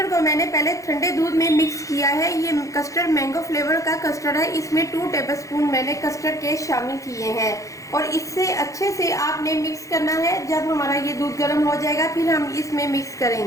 को मैंने पहले ठंडे दूध में मिक्स किया है। ये कस्टर्ड मैंगो फ्लेवर का कस्टर्ड है। इसमें 2 टेबलस्पून मैंने कस्टर्ड के शामिल किए हैं और इससे अच्छे से आपने मिक्स करना है। जब हमारा ये दूध गर्म हो जाएगा फिर हम इसमें मिक्स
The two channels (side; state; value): right; late; 0.16 ms